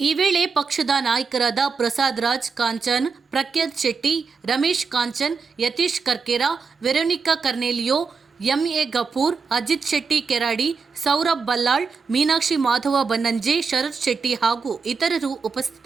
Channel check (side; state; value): left; quieter; 5.1 dB